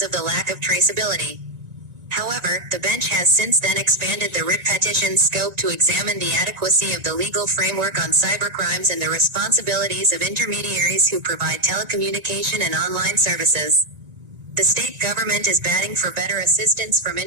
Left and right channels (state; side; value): late; left; 1.9 ms